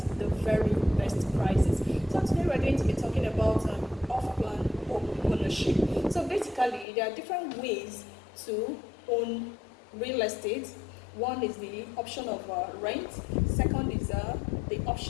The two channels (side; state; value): right; drops out; at 6.9 s